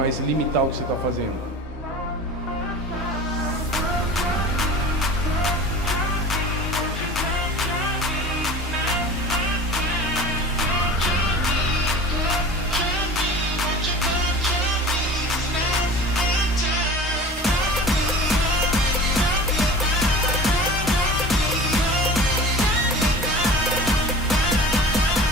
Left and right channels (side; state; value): both; normal; correlation 0.39